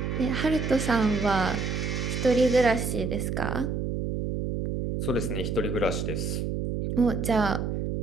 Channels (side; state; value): right; noise; hum, 2 dB below the sound